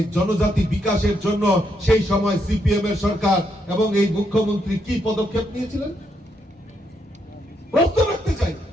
জনজাতি বিকাশের জন্য সেই সময় সিপিএম এর সরকার এবং এই মুখ্যমন্ত্রী কি পদক্ষেপ নিয়েছিলেন প্রশ্ন রাখতে চাই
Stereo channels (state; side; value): normal; both; correlation 0.78